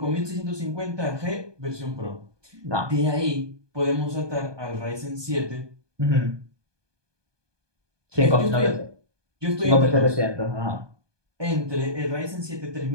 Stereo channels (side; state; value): left; late; 1.2 ms